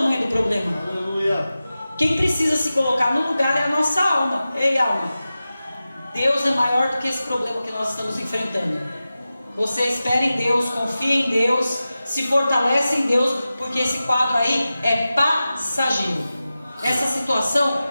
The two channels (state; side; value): inverted; both; correlation -0.94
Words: do problema. Quem precisa se colocar no lugar é a nossa alma. Ei, alma, Deus é maior do que esse problema que nós estamos enfrentando. Você espera em Deus, confia em Deus, se fortalece em Deus, porque esse quadro aí é passageiro. Essa situação